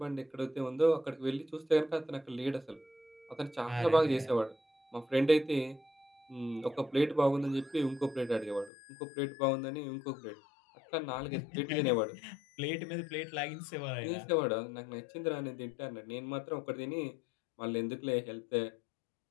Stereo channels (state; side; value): drops out; right; at 8.7 s